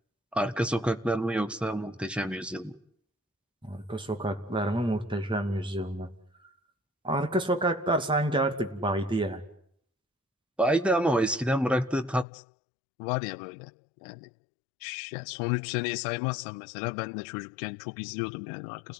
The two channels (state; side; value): drops out; right; at 12.2 s